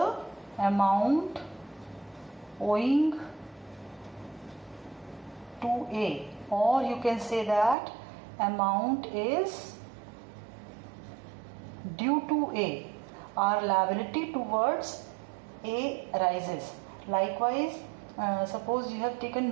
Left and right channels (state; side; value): drops out; left; at 7.8 s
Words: amount owing to A, or you can say that amount is due to A. Our liability towards A arises. Likewise, suppose you have